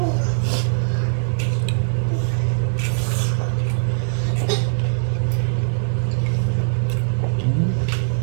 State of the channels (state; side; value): silent; left; digital silence